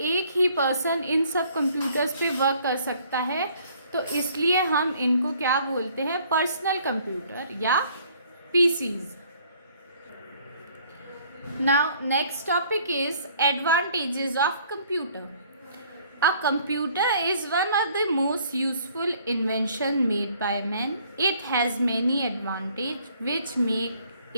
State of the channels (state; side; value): inverted; both; correlation -0.59